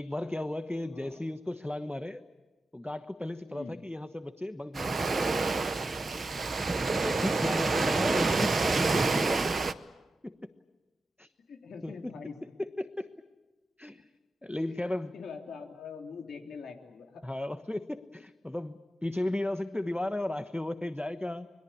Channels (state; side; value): normal; both; correlation 0.91